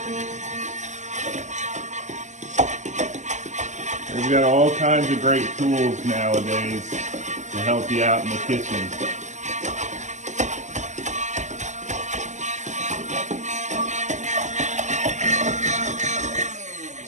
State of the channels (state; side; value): late; left; 0.34 ms